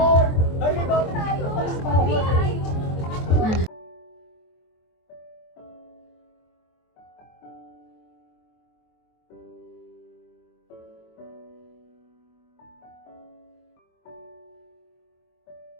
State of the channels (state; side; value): late; right; 23 ms